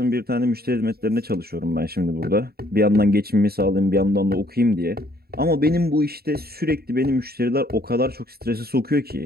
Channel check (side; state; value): left; late; 0.45 ms